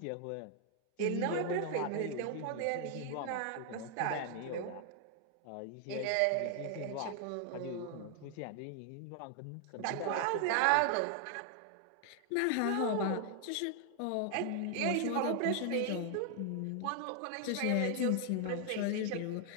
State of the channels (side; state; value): both; different; correlation 0.00